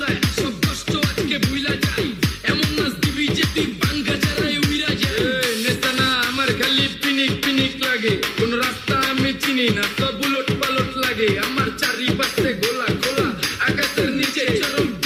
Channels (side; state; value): both; identical; correlation 1.00